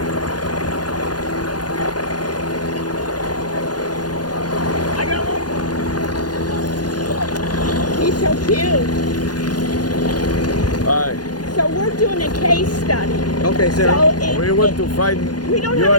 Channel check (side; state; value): right; late; 0.69 ms